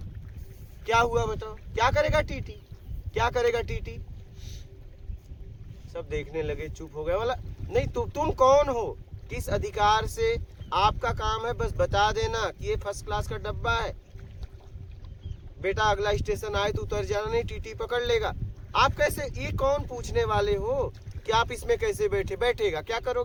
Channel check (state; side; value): identical; both; correlation 1.00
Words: क्या हुआ बताओ, क्या करेगा टीटी, क्या करेगा टीटी। सब देखने लगे, चुप हो गए। बोला नहीं तुम कौन हो, किस अधिकार से, आपका काम है बस बता देना कि ये फर्स्ट क्लास का डब्बा है, बेटा अगला स्टेशन आए तो उतर जाना, नहीं टीटी पकड़ लेगा। आप कैसे, ये कौन पूछने वाले हो कि आप इसमें कैसे बैठेगा, क्या